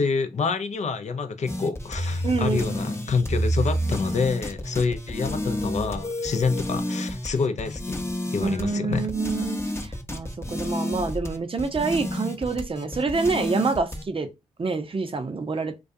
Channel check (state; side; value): normal; both; correlation 0.71